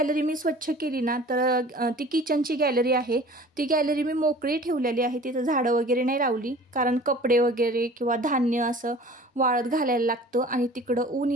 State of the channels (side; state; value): both; normal; correlation 0.45